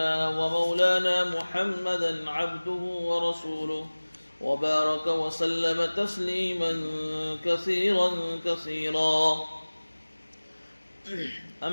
ومولانا محمدا عبده ورسوله وبارك وسلم تسليما كثيرا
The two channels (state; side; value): inverted; both; correlation -1.00